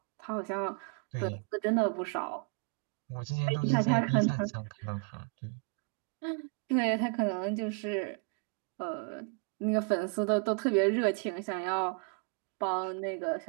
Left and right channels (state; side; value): quieter; left; 37.6 dB